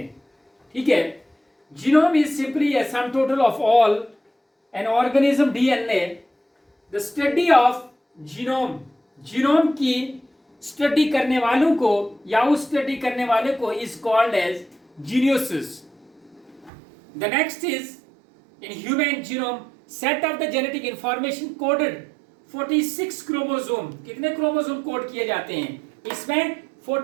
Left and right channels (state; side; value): drops out; left; at 16.7 s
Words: ठीक है, genome is simply a sum total of all an organism DNA. The study of genome, genome की स्टडी करने वालों को या उस स्टडी करने वाले को इज कॉल्ड एज जीनियोसिस। The next is in human genome set of the genetic information coded 46 chromosome. कितने क्रोमोसोम कोड किए जाते हैं? इसमें